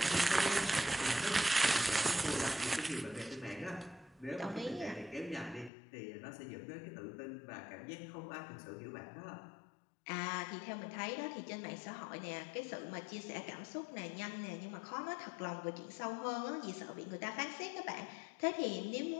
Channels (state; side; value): drops out; right; at 5.7 s